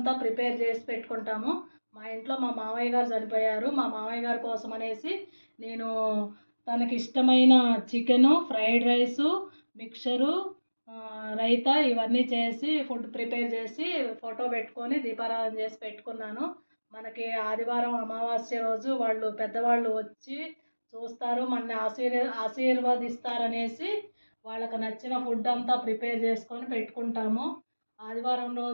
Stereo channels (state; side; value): inverted; both; correlation -1.00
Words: ప్రిపేర్ చేసి పెట్టుకుంటాము. మా ఇంట్లో మా మామయ్య గారు చనిపోయారు. మా మామయ్య గారి కోసం అనేసి నేను తనకి ఇష్టమైన chicken, fried rice, mixture, raita ఇవన్నీ చేసి ఫుడ్ ప్రిపేర్ చేసి ఫోటో పెట్టుకొని దీపారాధన చేసి పెట్టుకున్నాను. మనకి ఆదివారం అమావాస్య రోజు పెద్దవాళ్ళు వచ్చి చూస్తారు, మనని ఆశీర్వదిస్తారనేసి వాళ్ళకి నచ్చిన ఫుడ్ అంతా ప్రిపేర్ చేసుకొని పెట్టుకుంటాము. ఆదివారం